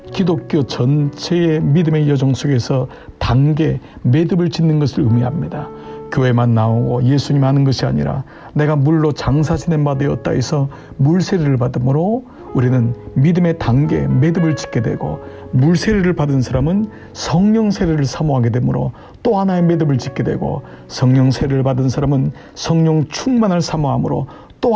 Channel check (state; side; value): identical; both; correlation 1.00